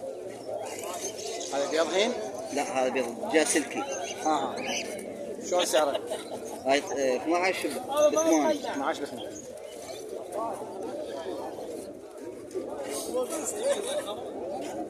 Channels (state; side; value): identical; both; correlation 1.00